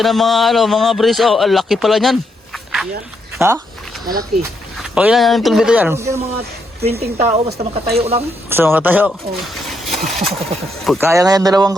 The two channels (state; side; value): normal; both; correlation 0.78